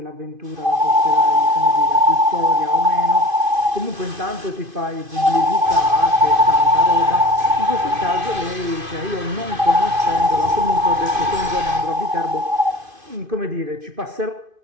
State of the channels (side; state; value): left; late; 2.5 ms